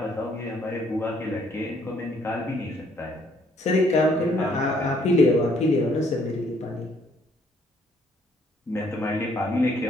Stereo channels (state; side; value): normal; both; correlation 0.66